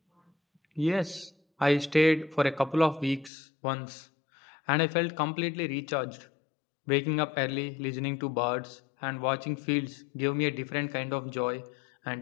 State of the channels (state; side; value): drops out; right; at 3.3 s